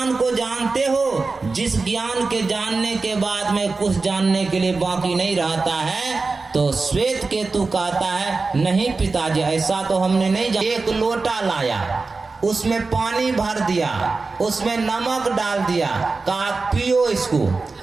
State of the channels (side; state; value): left; quieter; 3.9 dB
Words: को जानते हो जिस ज्ञान के जानने के बाद में कुछ जानने के लिए बाकी नहीं रहता है? तो श्वेत केतु कहता है नहीं पिताजी, ऐसा तो हमने नहीं जाना। एक लोटा लाया, उसमें पानी भर दिया, उसमें नमक डाल दिया, कहा पियो इसको।